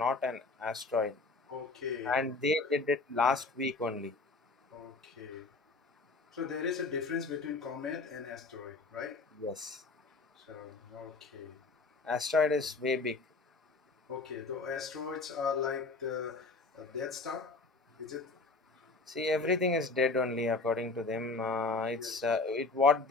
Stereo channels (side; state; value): right; quieter; 3.7 dB